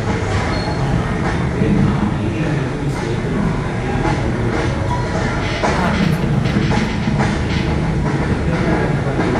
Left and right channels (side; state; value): both; identical; correlation 1.00